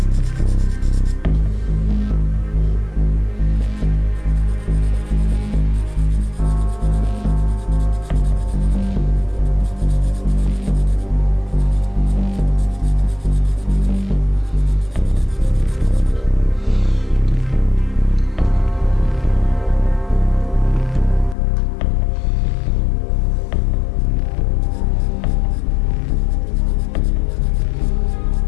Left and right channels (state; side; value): drops out; right; at 21.4 s